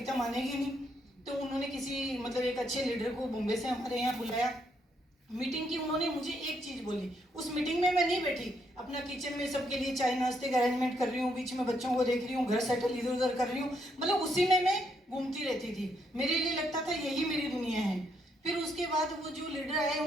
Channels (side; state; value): both; normal; correlation 0.75